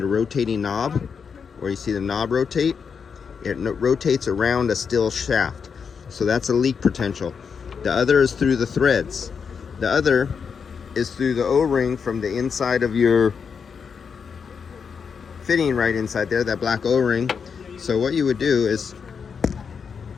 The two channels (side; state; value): right; quieter; 6.2 dB